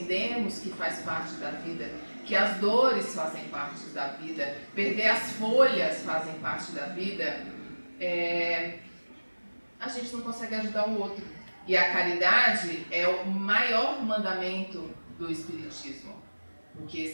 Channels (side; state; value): both; inverted; correlation -1.00